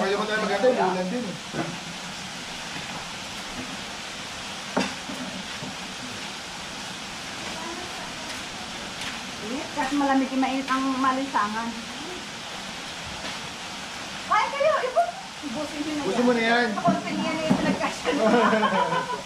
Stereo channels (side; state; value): both; identical; correlation 1.00